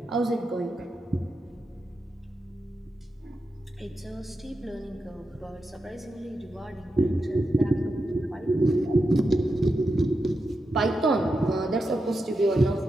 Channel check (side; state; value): both; normal; correlation 0.87